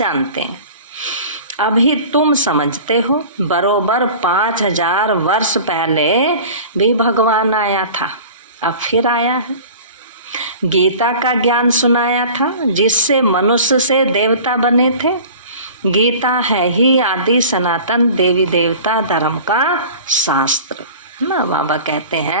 हैं। अभी तुम समझते हो, बरोबर 5000 वर्ष पहले भी भगवान आया था, अब फिर आया है। गीता का ज्ञान सुनाया था, जिससे मनुष्य से देवता बने थे। गीता है ही आदि सनातन देवी देवता धर्म का शास्त्र ना। बाबा कहते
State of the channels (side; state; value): both; inverted; correlation -0.40